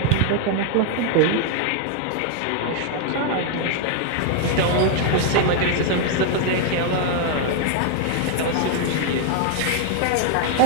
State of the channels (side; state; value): both; different; correlation 0.00